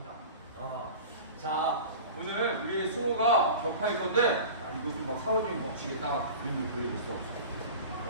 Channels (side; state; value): both; inverted; correlation -0.36